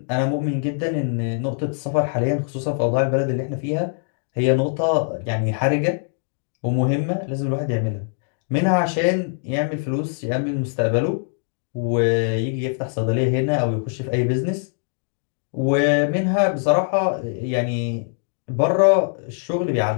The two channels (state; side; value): silent; right; digital silence